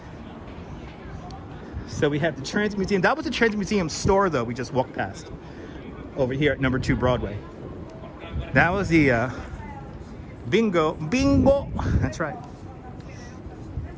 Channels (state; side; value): identical; both; correlation 1.00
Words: So we have the Transit Museum. That was the Transit Museum store, though, we just walked past. Over here at number 2 Broadway. That was the bingo. That's right.